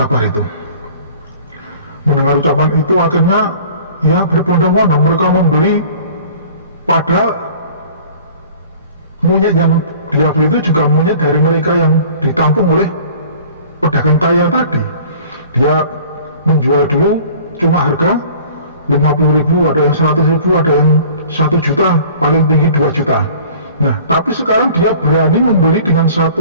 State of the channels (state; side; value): inverted; both; correlation -0.48